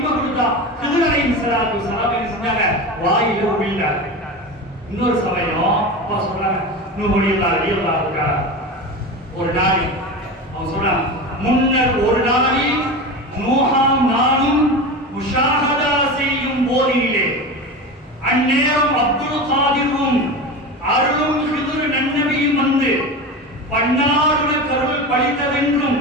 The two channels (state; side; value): normal; both; correlation 0.26